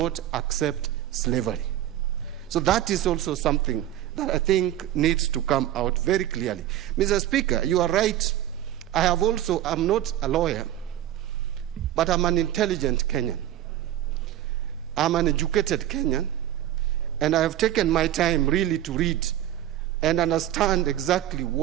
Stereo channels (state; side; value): quieter; left; 12.6 dB